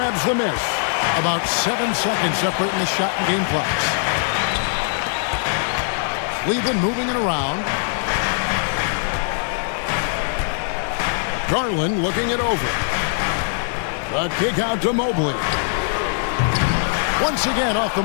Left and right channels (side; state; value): right; silent; 56 dB below the other